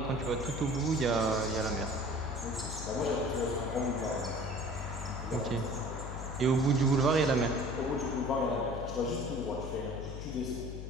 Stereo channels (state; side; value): noise; left; hum, 7 dB below the sound